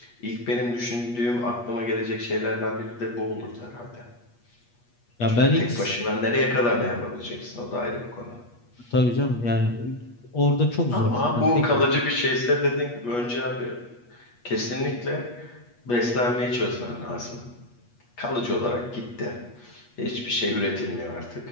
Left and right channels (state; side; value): late; right; 8.3 ms